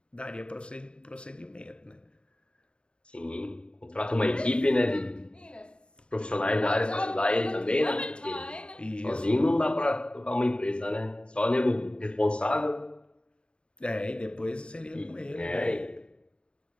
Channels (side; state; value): right; late; 0.053 ms